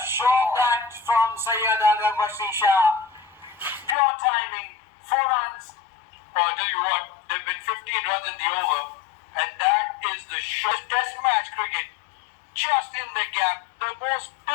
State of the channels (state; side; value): drops out; right; at 4.0 s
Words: shot that from Syed HAIDER SHAH. Pure timing. 4 runs. Oh, I'll tell you what, there have been 15 runs in the over, and that is the short test match cricket. Just in the gap, the most